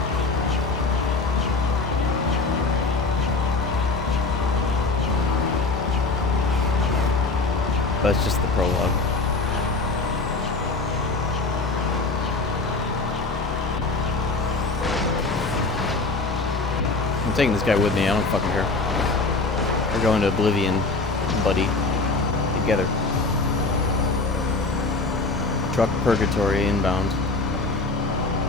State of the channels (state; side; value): quieter; right; 3.6 dB